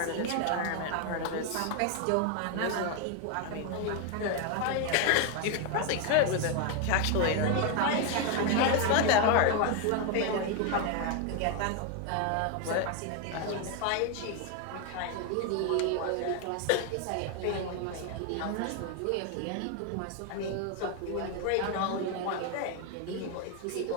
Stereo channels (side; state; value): both; different; correlation 0.01